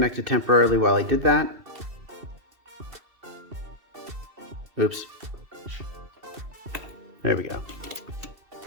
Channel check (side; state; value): left; late; 2.7 ms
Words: temporarily while I did that. Oops. There we go.